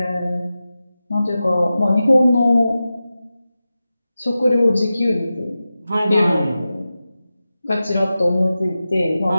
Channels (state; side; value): inverted; both; correlation -0.93